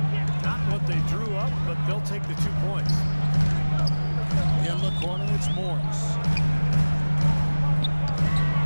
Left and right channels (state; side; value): inverted; both; correlation -1.00